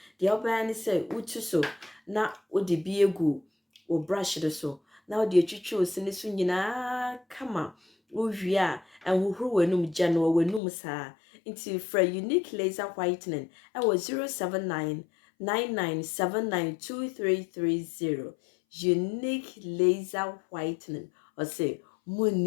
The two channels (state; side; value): drops out; right; at 10.6 s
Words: The obani say utu so na odi bi egu o brush de so. Na odi etwitwe osini so nyina kama. Uwia and huhuru wenum jano wenum sa. Into for unique laser whitening. I was 079-9979-2330. Unique laser whitening. Or say